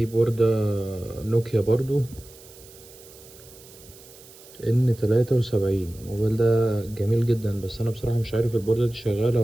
بوردة نوكيا برضو N73. الموبايل ده جميل جدا، بس انا بصراحة مش عارف البوردة دي شغالة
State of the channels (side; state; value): right; noise; hiss, 21 dB below the sound